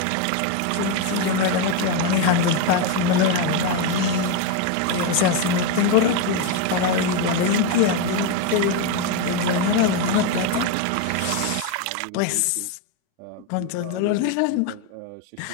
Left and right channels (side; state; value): both; different; correlation 0.02